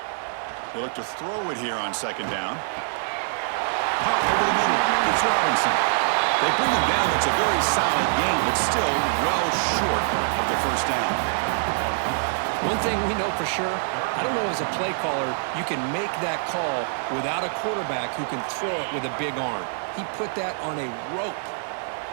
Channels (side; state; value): left; silent; digital silence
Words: They look to throw it here on 2nd down. Pop over the middle. It's Robinson. They bring him down. That's a very solid gain, but still well short of the first down. One thing we know for sure, I don't know as a play caller, you can make that call without a quarterback who can throw it with a big arm. He put that on a rope.